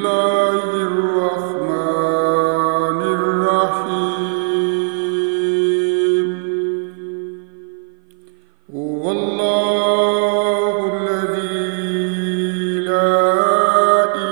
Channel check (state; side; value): silent; left; 57 dB below the other